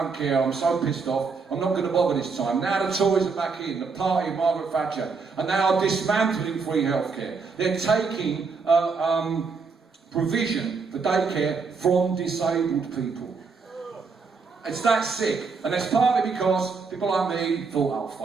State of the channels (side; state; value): left; quieter; 4.9 dB